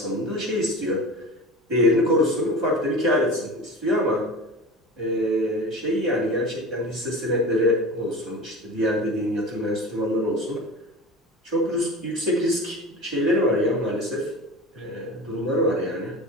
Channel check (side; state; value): both; normal; correlation 0.33